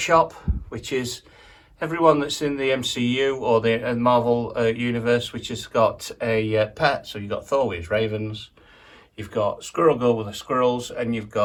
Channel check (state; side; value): identical; both; correlation 1.00